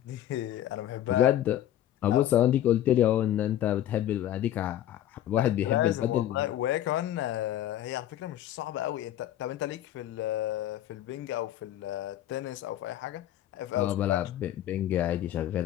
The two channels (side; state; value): right; quieter; 12.2 dB